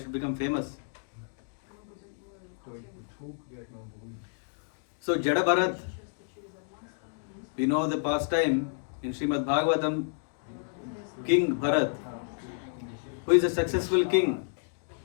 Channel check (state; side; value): silent; right; digital silence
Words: become famous. So, Jada Bharat, we know the pastime in Srimad Bhagavatam, King Bharat, who is a successful king.